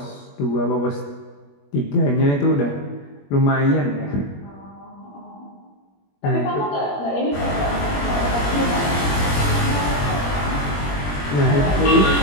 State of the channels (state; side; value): late; right; 21 ms